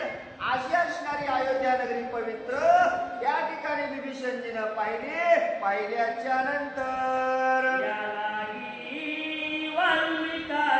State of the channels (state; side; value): identical; both; correlation 1.00